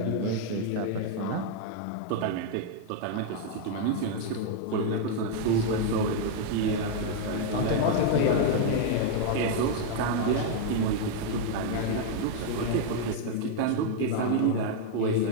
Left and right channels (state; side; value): different; both; correlation 0.00